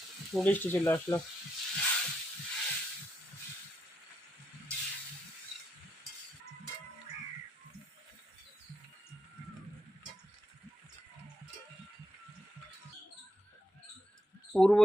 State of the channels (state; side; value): normal; both; correlation 0.81